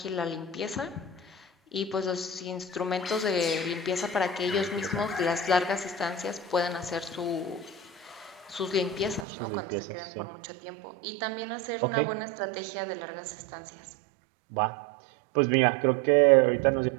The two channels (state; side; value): drops out; left; at 9.2 s